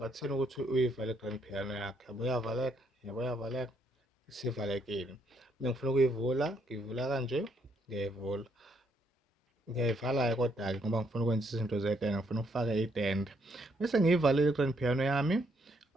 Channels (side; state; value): both; normal; correlation 0.72